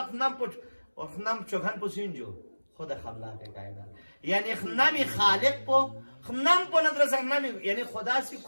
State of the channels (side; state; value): both; inverted; correlation -1.00